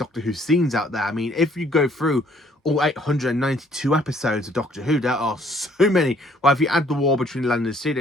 Who scenes out there. I mean, if you go through all 892 episodes of Doctor Who, there are so many. Well, if you add the war between Land and Sea, it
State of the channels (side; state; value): both; normal; correlation 0.62